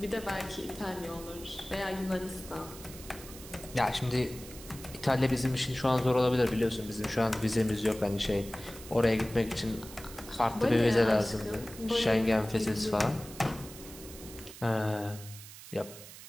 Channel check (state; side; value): noise; right; hiss, 15 dB below the sound